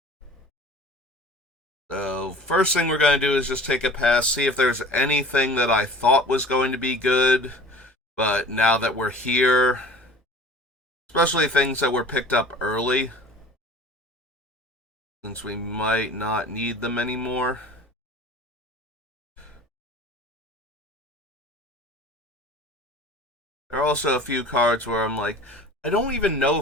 So first thing we're going to do is just take a pass, see if there's anything that I thought was going to be good, but now that we're here, especially things that were picked up early, since we might not need them anymore. There are also a few cards where I'm like, I don't even know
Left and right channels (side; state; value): both; normal; correlation 0.43